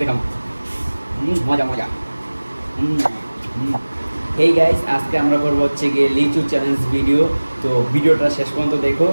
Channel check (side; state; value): both; inverted; correlation -1.00